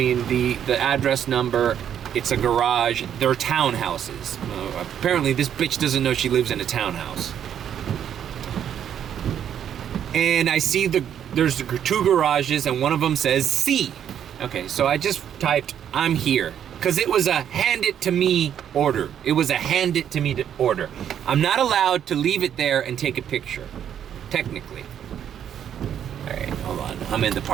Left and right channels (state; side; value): quieter; left; 9.4 dB